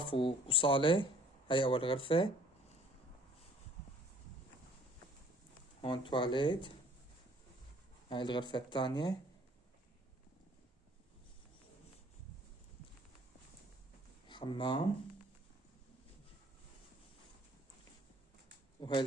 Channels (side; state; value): both; normal; correlation 0.57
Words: وصالة. هاي أول غرفة. هون تواليت. هاي الغرفة الثانية. حمام. وهي